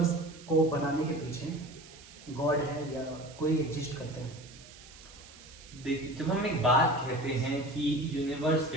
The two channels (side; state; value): right; noise; hiss, 20 dB below the sound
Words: को बनाने के पीछे गॉड है या कोई एग्जिस्ट करते हैं? देखिए, जब हम एक बात कहते हैं कि यूनिवर्स